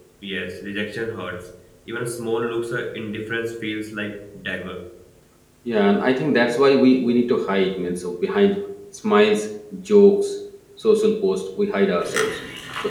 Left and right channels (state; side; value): identical; both; correlation 1.00